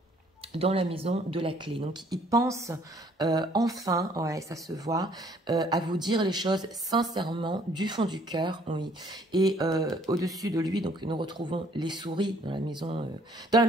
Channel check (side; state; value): both; normal; correlation 0.61